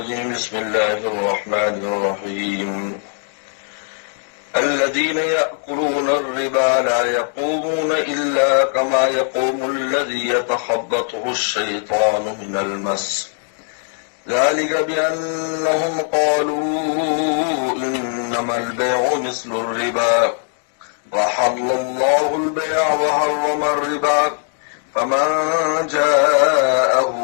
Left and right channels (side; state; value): right; silent; 62 dB below the other